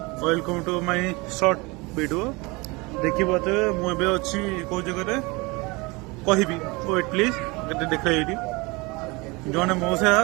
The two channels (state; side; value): quieter; left; 25.5 dB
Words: welcome to my short video देखी बात मुझे अच्छी कौ जगह कहबी वेट प्लीज गए देख ये जड़े मौसा